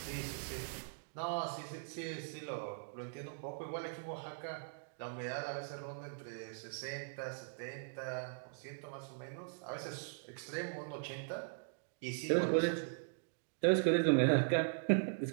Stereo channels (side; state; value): left; silent; digital silence